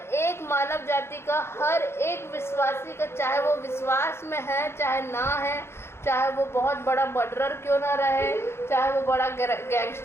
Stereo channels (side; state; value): right; late; 0.12 ms